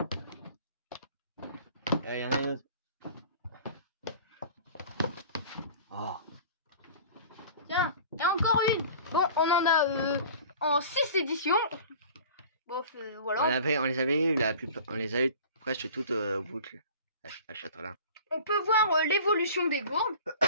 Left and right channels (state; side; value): inverted; both; correlation -0.42